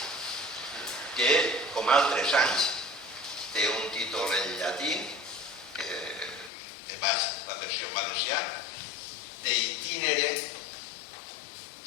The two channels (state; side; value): drops out; right; at 6.5 s